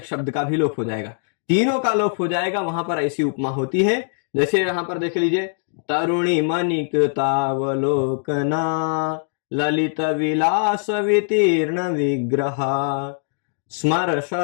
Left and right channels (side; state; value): right; silent; digital silence